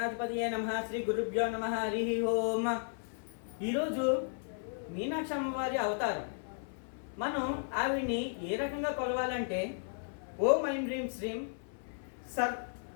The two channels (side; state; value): right; silent; 55 dB below the other